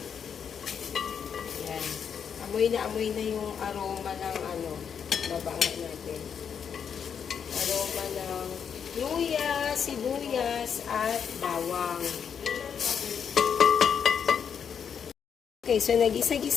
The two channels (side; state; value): right; quieter; 7.4 dB